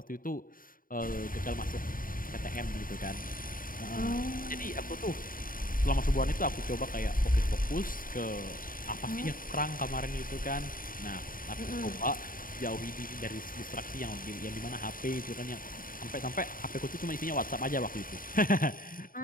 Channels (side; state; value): right; late; 0.41 ms